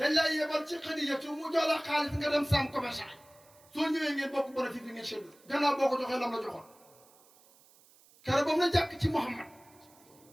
lay yebal ci xadijatu mu jox la xaalis nga dem saam commerçant soo ñëwee ngeen bokk bénéfice bi ngeen seetlu gannaaw boo ko joxee lam la joxoon kere ba mu la jàkk ci Muhammad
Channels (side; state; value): right; noise; hiss, 28 dB below the sound